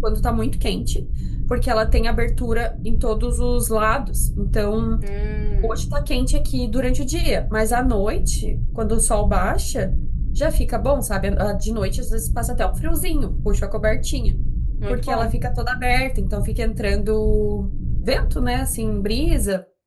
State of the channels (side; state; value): both; identical; correlation 1.00